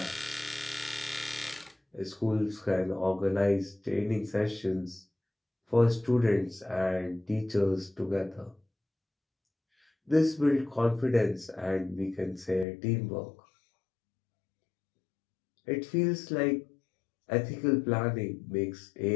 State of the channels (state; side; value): drops out; right; at 12.7 s